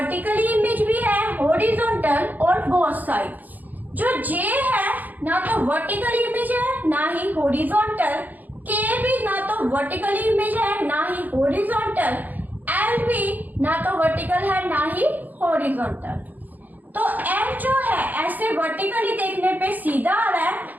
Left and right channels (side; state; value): left; late; 0.083 ms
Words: इमेज भी है, हॉरिजॉन्टल और बोथ साइड। जो जे है ना तो वर्टिकल इमेज है ना ही हॉरिजॉन्टल, के भी ना तो वर्टिकल इमेज है ना ही हॉरिजॉन्टल, एल भी ना तो वर्टिकल है ना ही हॉरिजॉन्टल। तो एम जो है ऐसे वर्टिकली देखने पे सीधा आ रहा है,